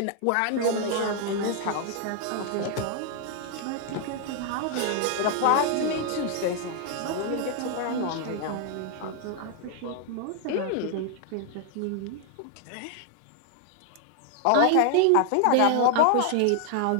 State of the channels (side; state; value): both; different; correlation 0.00